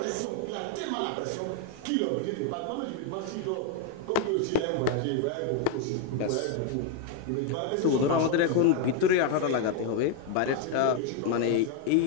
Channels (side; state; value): both; different; correlation 0.01